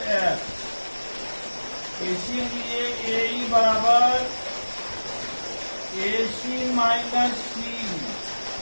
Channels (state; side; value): inverted; both; correlation -1.00